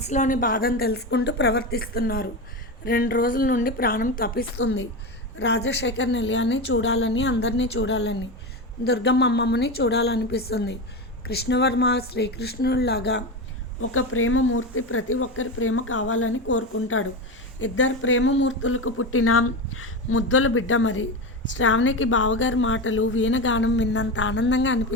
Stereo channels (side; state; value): both; normal; correlation 0.19